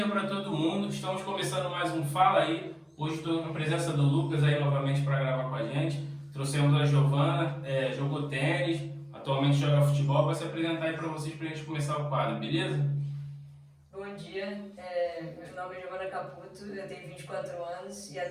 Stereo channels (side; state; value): both; identical; correlation 1.00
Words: para todo mundo. Estamos começando mais um Fala Aí. Hoje estou na presença do Lucas aí novamente para gravar com a gente. Trouxemos a Giovana, jogou tênis, atualmente joga futebol, vai se apresentar aí para vocês para a gente começar o quadro, beleza? Bom dia, meu nome é Giovana Caputo, eu tenho 24 anos e